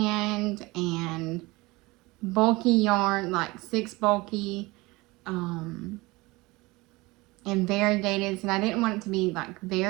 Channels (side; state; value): left; quieter; 22.4 dB